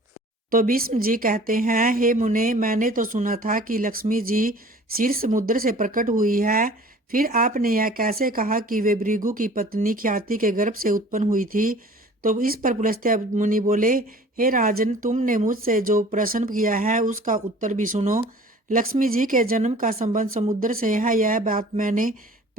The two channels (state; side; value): normal; both; correlation 0.47